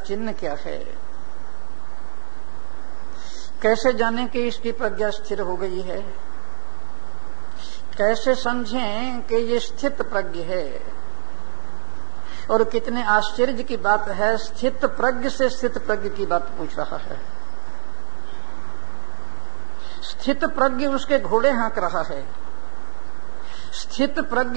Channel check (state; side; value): silent; left; digital silence